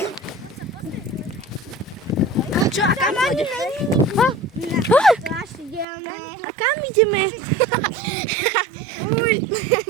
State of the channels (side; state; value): left; drops out; at 5.9 s